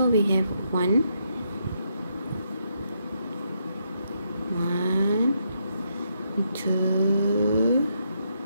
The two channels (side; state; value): both; inverted; correlation -0.78